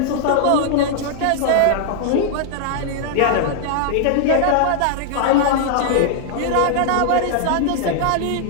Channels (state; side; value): different; both; correlation -0.01